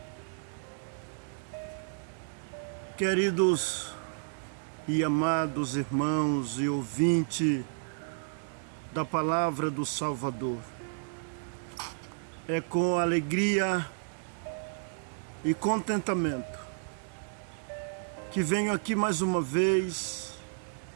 Queridos e amados irmãos e ouvintes da palavra do Salvador, é com alegria e contentamento que venho aqui mais uma vez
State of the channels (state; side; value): silent; left; digital silence